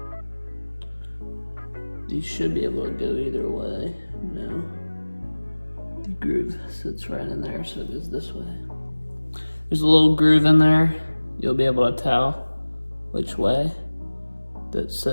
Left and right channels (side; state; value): both; inverted; correlation -1.00